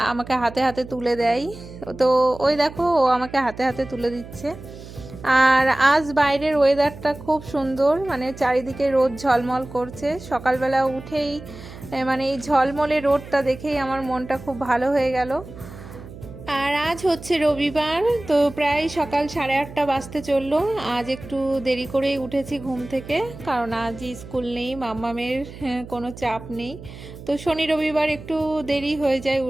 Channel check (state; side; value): noise; right; hum, 15 dB below the sound